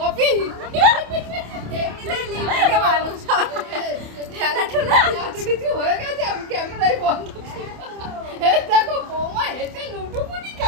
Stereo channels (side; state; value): left; late; 27 ms